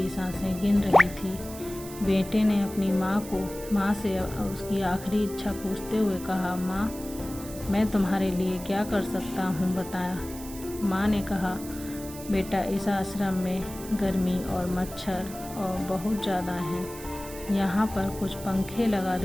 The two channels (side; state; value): right; noise; hiss, 14 dB below the sound